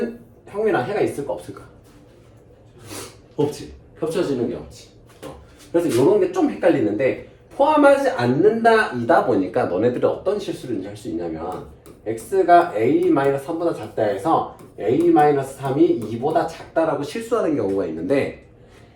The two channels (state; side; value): identical; both; correlation 1.00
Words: 형이나 해가 있을까 없을까? 없지. 겹쳐지는 게 없지. 그래서 이런 게 좀 헷갈리는데 포함하지 않는다 이다 보니까 너네들이 어떤 실수를 할 수 있냐면 x가 a-3보다 작다 해서 a-3이 2보다 작다라고 실수하는 경우가 있는데